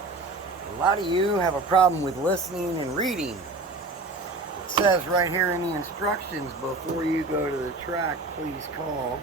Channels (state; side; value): quieter; left; 3.2 dB